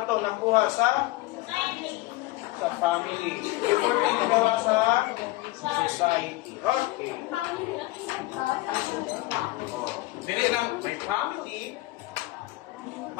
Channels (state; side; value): quieter; right; 19.2 dB